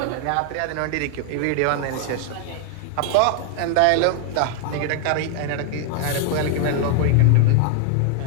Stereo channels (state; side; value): different; both; correlation 0.00